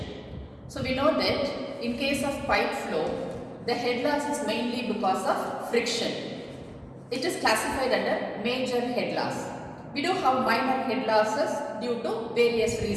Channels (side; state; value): both; identical; correlation 1.00